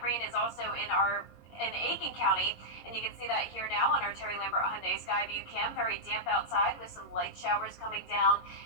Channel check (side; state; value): right; late; 21 ms